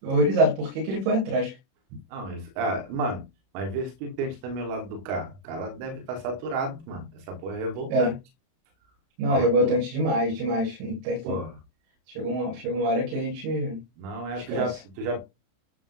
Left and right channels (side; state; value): left; late; 32 ms